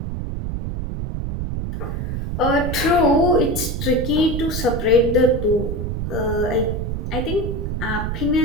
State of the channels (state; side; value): noise; right; rumble, 3 dB below the sound